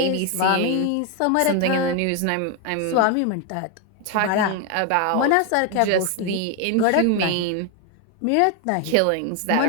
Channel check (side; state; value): both; different; correlation 0.01